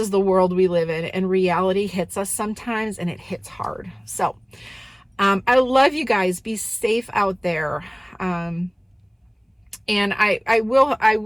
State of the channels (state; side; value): identical; both; correlation 1.00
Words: the world we live in, and reality hits us sometimes, and it hits hard. So I love you guys. Be safe out there. And I